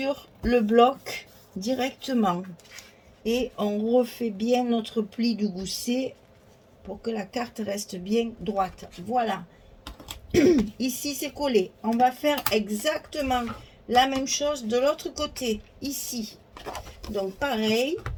le bloc directement et on refait bien notre pli du gousset pour que la carte reste bien droite. Voilà. Ici c'est collé. On va faire exactement la même chose de l'autre côté ici. Donc pareil,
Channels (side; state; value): both; identical; correlation 1.00